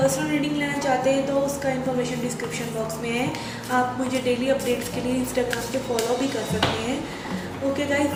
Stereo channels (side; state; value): both; identical; correlation 1.00